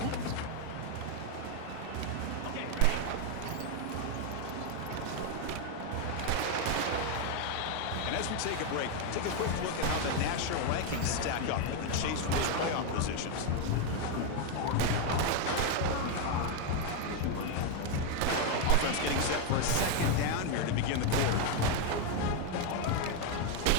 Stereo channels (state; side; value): different; both; correlation 0.01